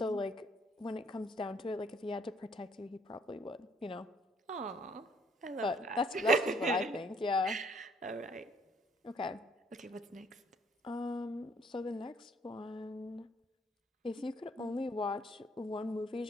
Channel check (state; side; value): normal; both; correlation 0.64